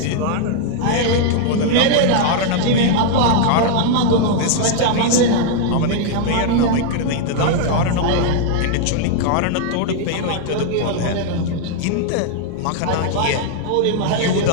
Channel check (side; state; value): both; different; correlation 0.00